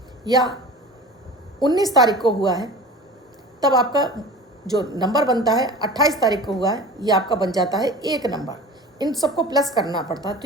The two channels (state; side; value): normal; both; correlation 0.37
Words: या 19 तारीख को हुआ है, तब आपका जो नंबर बनता है 28 तारीख को हुआ है, ये आपका बन जाता है 1 नंबर। इन सबको प्लस करना पड़ता है, तो